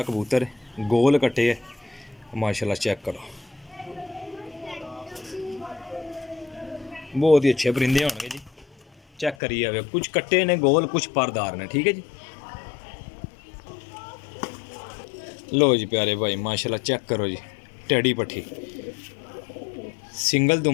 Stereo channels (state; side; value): drops out; right; at 9.3 s